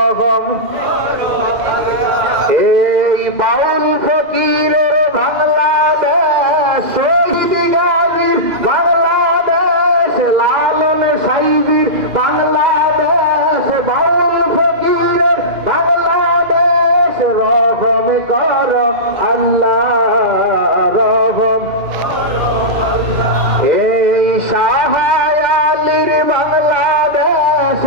এই বাউল ফকিরের বাংলাদেশ শহীদ গাজীর বাংলাদেশ লালন সাইজির বাংলাদেশ বাউল ফকিরের বাংলাদেশ রহম কর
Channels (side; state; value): left; late; 2.0 ms